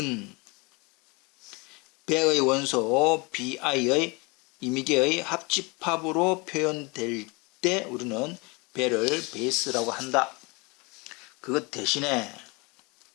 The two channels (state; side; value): quieter; right; 27.8 dB